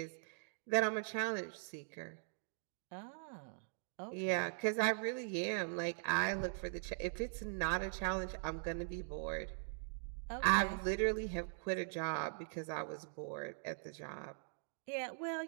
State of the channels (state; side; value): silent; left; digital silence